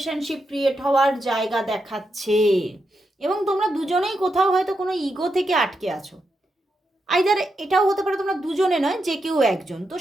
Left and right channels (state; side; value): normal; both; correlation 0.85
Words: ক্রিয়েট হওয়ার জায়গা দেখাচ্ছে। এবং তোমরা দুজনেই কোথাও হয়তো কোনো ইগো থেকে আটকে আছো, আইদার এটাও হতে পারে তোমরা দুজনে নয়, যে কেউ একজন, তো